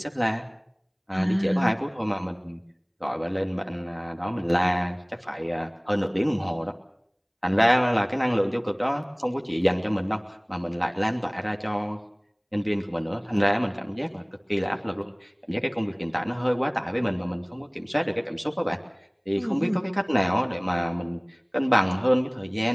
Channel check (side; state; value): both; identical; correlation 1.00